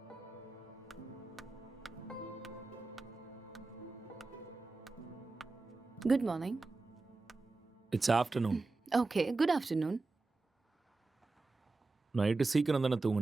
Good morning. It's afternoon. Okay, good afternoon. Night சீக்கிரம் தானே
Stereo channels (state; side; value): quieter; left; 3.6 dB